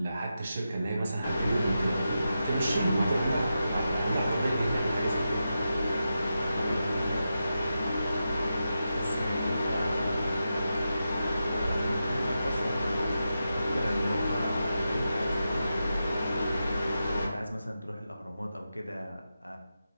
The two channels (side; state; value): both; inverted; correlation -0.89